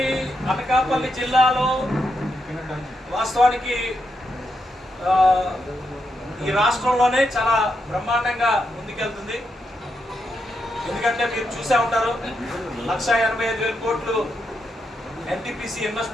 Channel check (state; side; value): normal; both; correlation 0.83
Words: జిల్లాలో వాస్తవానికి ఈ రాష్ట్రంలోనే చాలా బ్రహ్మాండంగా ముందుకెళ్తుంది. ఎందుకంటే మీరు చూసే ఉంటారు, 1,85,000 కోట్లు ఎన్టీపీసీ